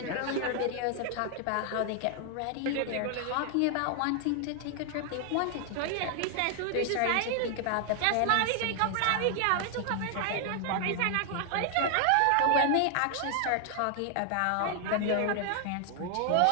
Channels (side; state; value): both; different; correlation 0.00